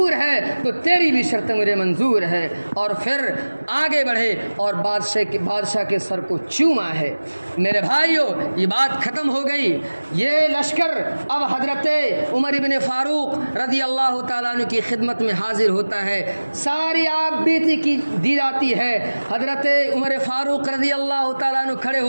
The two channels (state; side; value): inverted; both; correlation -1.00